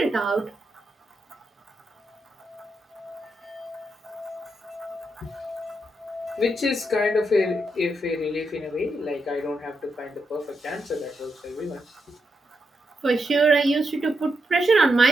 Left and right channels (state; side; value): normal; both; correlation 0.83